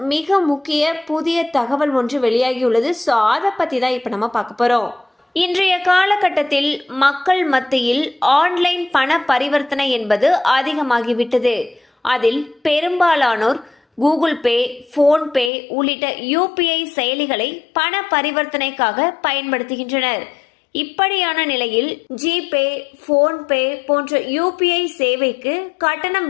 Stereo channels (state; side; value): drops out; right; at 15.5 s